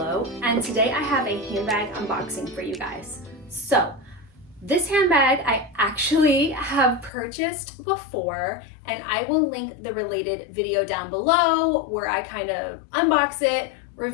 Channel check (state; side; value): drops out; right; at 7.1 s